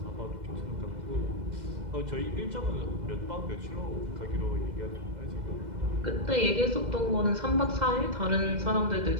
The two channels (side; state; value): left; late; 2.0 ms